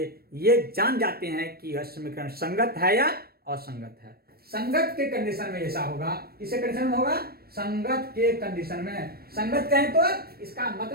ये जान जाते हैं कि यह समीकरण संगत है या असंगत है। संगत के कंडीशन में ऐसा होगा। किसके कंडीशन में होगा? संगत के कंडीशन में। संगत कहें तो इसका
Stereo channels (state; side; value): late; left; 0.44 ms